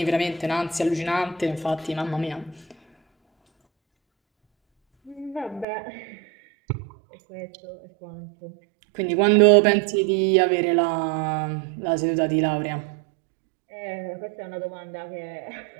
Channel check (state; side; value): drops out; left; at 5.7 s